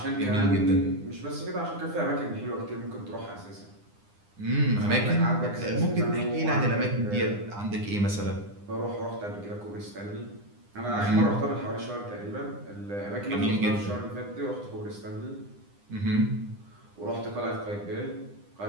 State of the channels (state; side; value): late; left; 9.9 ms